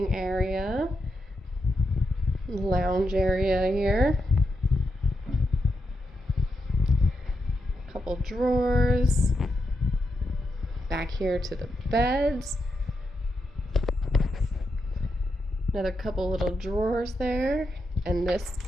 area. Lounge area here. Couple drawers. Back here to the beds. Another couple little drawers there. And this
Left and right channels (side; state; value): both; normal; correlation 0.85